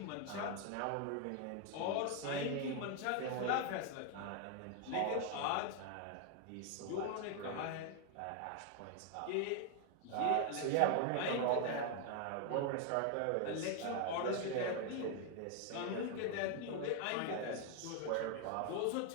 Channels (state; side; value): different; both; correlation 0.00